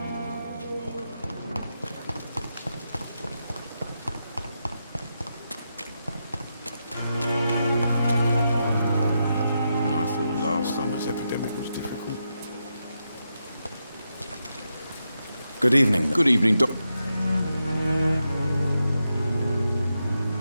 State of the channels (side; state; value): both; inverted; correlation -0.85